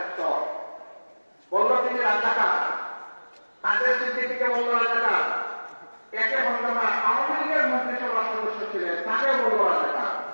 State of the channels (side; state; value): both; inverted; correlation -1.00